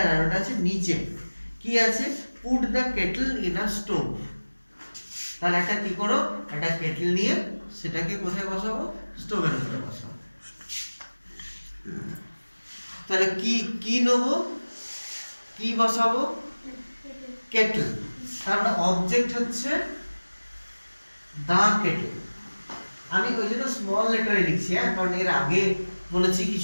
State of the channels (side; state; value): both; inverted; correlation -1.00